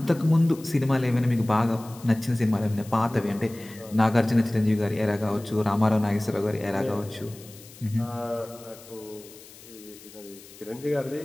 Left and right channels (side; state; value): left; noise; hiss, 20 dB below the sound